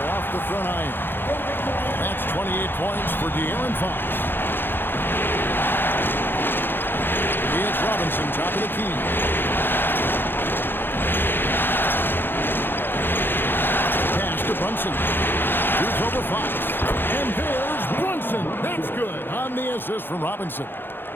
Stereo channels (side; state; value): right; late; 0.10 ms